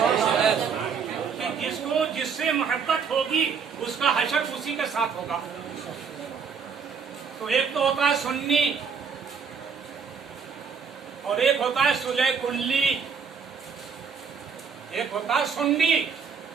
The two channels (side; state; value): left; quieter; 6.2 dB